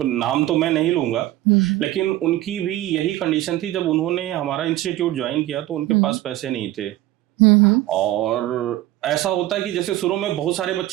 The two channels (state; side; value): quieter; left; 15.3 dB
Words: नाम तो मैं नहीं लूंगा, लेकिन उनकी भी यही कंडीशन थी। जब उन्होंने हमारा इंस्टीट्यूट ज्वाइन किया तो उनके पास पैसे नहीं थे, और ऐसा होता है कि जैसे शुरू में बहुत सारे